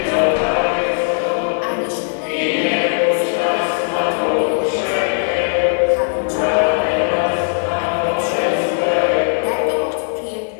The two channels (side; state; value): right; silent; digital silence